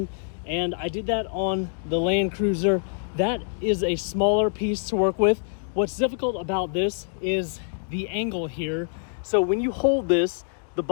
And I did that on the Land Cruiser. That is a smaller piece to work with. What's difficult about this is the angle here. So when you hold this, the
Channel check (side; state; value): right; silent; digital silence